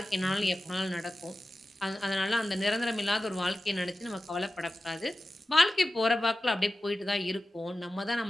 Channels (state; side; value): normal; both; correlation 0.94